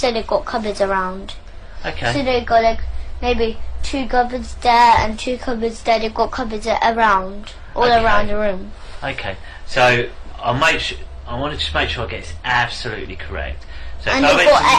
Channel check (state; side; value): identical; both; correlation 1.00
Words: they got cupboards around. Okay. So they got maybe 2 cupboards there and 2 cupboards there. They've got cupboards around, all around the room. Okay. So I want to just make sure I get this absolutely correct. So And they've